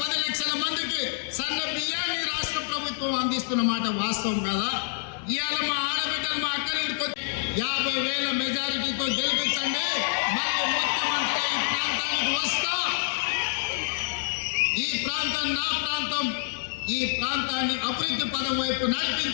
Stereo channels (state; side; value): silent; right; digital silence